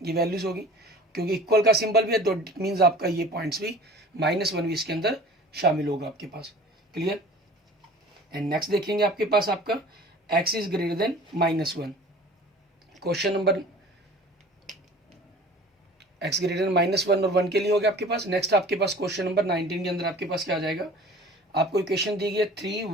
ये वैल्यूज होगी, क्योंकि इक्वल का सिंबल भी है, तो इट मीन्स आपका ये पॉइंट्स भी -1 भी इसके अंदर शामिल होगा आपके पास। क्लियर, एंड नेक्स्ट देखेंगे आपके पास आपका x is greater then -1। Question number x greater then -1 और 1 के लिए हो गया आपके पास। नेक्स्ट आपके पास क्वेश्चन नंबर 19 के अंदर आपके पास क्या आ जाएगा, आपको इक्वेशन दी गई है 3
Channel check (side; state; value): both; normal; correlation 0.44